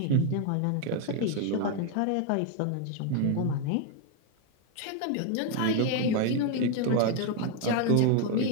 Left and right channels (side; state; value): both; different; correlation 0.01